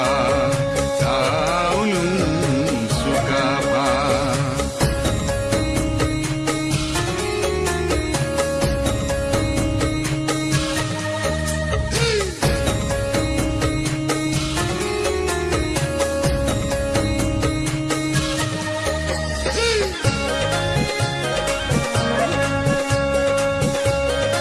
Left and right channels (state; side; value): identical; both; correlation 1.00